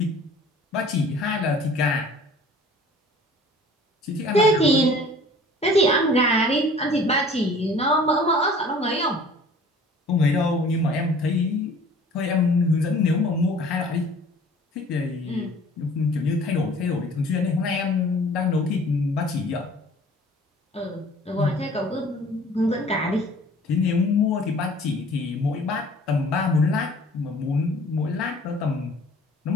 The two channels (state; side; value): normal; both; correlation 0.49